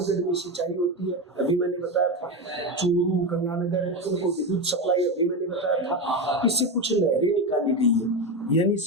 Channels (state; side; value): normal; both; correlation 0.16